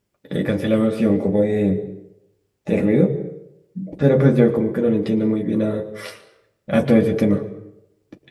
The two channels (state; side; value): identical; both; correlation 1.00